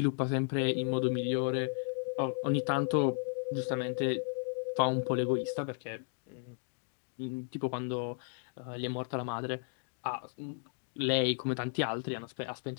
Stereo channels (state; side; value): silent; right; digital silence